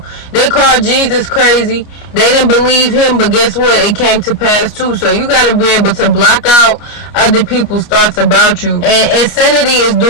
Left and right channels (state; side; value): late; right; 29 ms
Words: They called Jesus crazy. They didn't believe him, but guess what? It came to pass too. So you got to be able to block out other people's thoughts about you. And insanity is